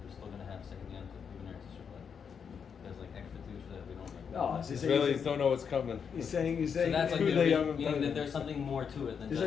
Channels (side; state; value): right; quieter; 6.8 dB